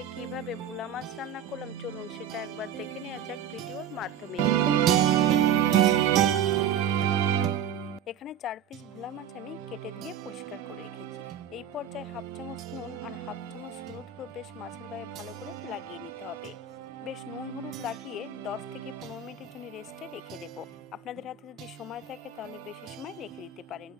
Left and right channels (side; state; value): left; quieter; 7.8 dB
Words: কিভাবে ভোলা মাছ রান্না করলাম, চলুন সেটা একবার দেখে নেওয়া যাক ভিডিওর মাধ্যমে। এখানে 4 পিস ভোলা মাছ আমি কেটে ধুয়ে পরিষ্কার করে রেখেছি। এই পর্যায়ে হাফ চামচ নুন আর হাফ চামচ হলুদ গুঁড়ো বেশ মাছের গায়ে ভালো করে লাগিয়ে নিতে হবে। বেশ নুন হলুদ লাগিয়ে 10 থেকে 15 মিনিটের জন্য রেস্টে রেখে দেব। আপনাদের হাতে যদি সময় থাকে তাহলে বেশি সময় রেখে দিতে পারেন।